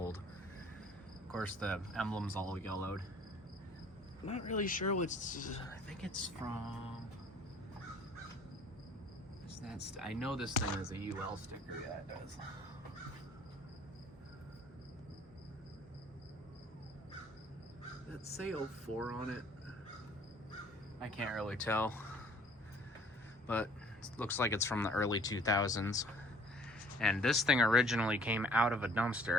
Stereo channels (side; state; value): both; normal; correlation 0.55